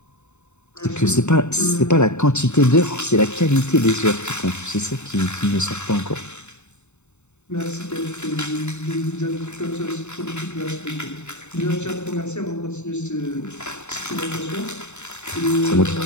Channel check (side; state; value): right; late; 0.82 ms